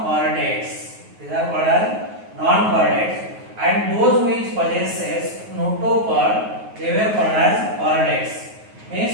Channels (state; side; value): late; left; 9.4 ms